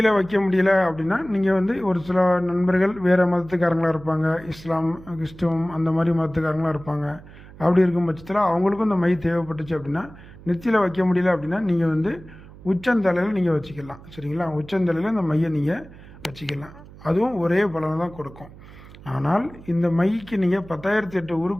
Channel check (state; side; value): noise; right; hum, 19 dB below the sound